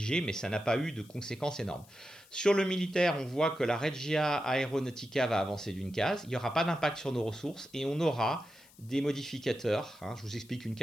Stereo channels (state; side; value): noise; left; hiss, 26 dB below the sound